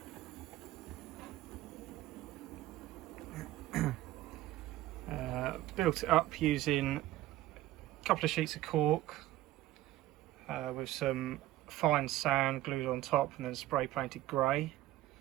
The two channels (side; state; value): left; quieter; 15.8 dB